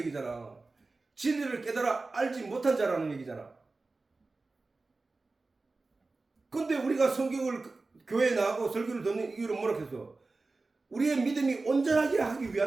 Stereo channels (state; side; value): quieter; left; 3.6 dB